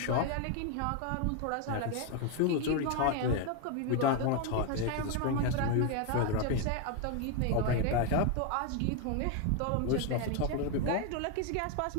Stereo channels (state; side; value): different; both; correlation 0.01